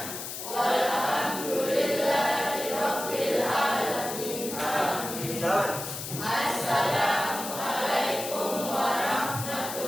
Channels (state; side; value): noise; left; hiss, 7 dB below the sound